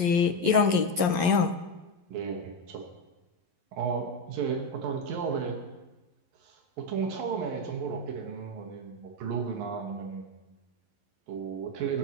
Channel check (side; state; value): left; late; 11 ms